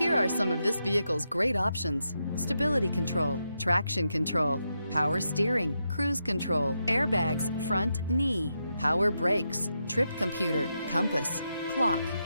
are some of this vehicle's great options: stability control, traction control, power steering, cruise control, airbags, front knee, power brakes, trip computer, compass, clock,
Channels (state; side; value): inverted; both; correlation -0.84